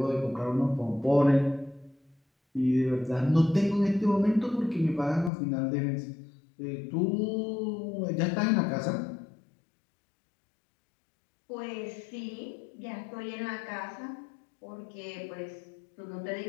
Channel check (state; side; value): drops out; right; at 5.3 s